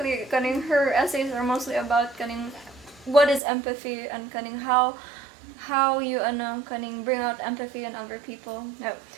Cunning, her essays are mostly about Cunning, what is empathy and Cunning, how you Cunning bring out empathy in other people. No,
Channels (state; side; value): drops out; left; at 3.4 s